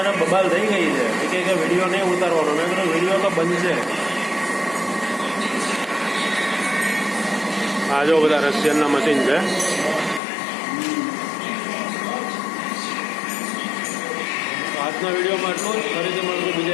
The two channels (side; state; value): right; drops out; at 10.2 s